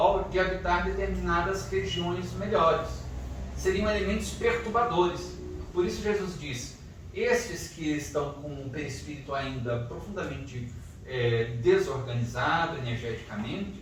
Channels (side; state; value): both; identical; correlation 1.00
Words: de habitar determinadas regiões melhores. Seriam elementos perturbadores. Por isso Jesus diz, estes que estão com o perispírito ainda profundamente desorganizado energeticamente,